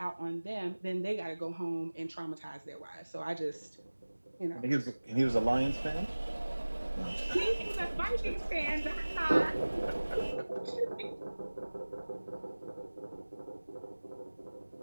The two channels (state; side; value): inverted; both; correlation -1.00